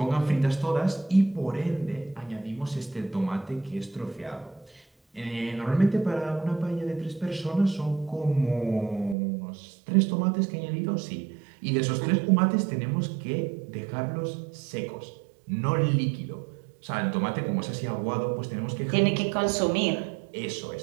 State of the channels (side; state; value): left; drops out; at 9.2 s